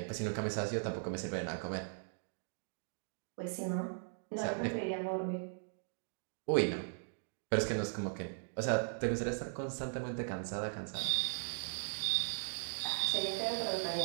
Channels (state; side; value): silent; left; digital silence